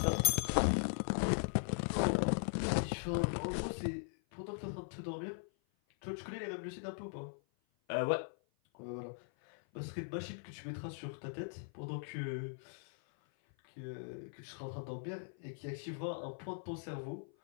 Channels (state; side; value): silent; right; 51 dB below the other